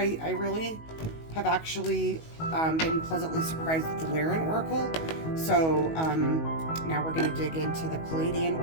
really have actually been pleasantly surprised with the Lyran Oracle. So now we're going to dig into the Pleiadian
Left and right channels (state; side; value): late; right; 19 ms